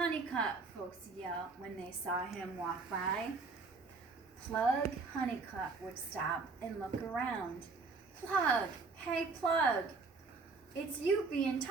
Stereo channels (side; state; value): left; quieter; 4.2 dB